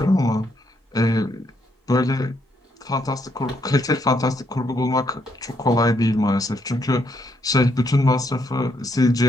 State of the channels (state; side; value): normal; both; correlation 0.75